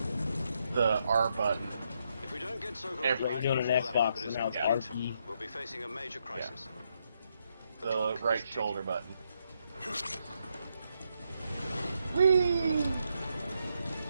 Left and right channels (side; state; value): both; inverted; correlation -0.79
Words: button. If we don't get Sokolov Every- back You're doing an before that Xbox, weapon and is now it's complete, RP. we'll be facing a major crisis. The right shoulder button. Whee!